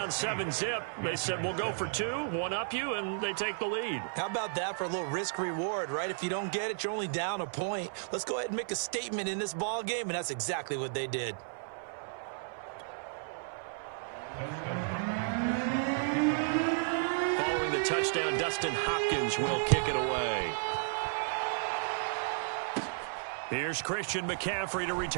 7-zip. They said, we'll go for 2, one up you, and they take the lead. How about that for a little risk-reward, right? If you don't get it, you're only down a point. Let's go ahead and make a statement in this ball game, and that's exactly what they did. Following the touchdown, Dustin Hopkins will kick it away. Here's Christian McCaffrey to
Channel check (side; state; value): left; silent; 56 dB below the other